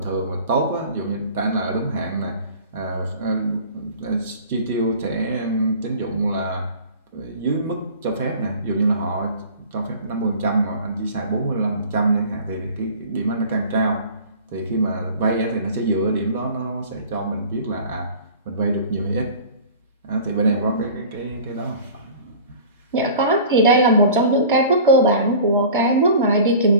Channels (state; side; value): inverted; both; correlation -0.42